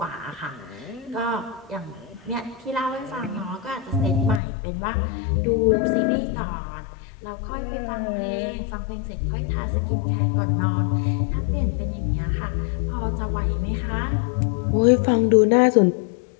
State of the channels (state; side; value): drops out; right; at 4.4 s